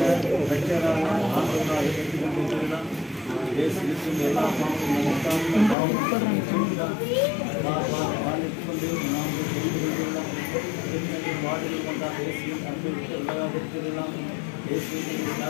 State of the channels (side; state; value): right; drops out; at 5.8 s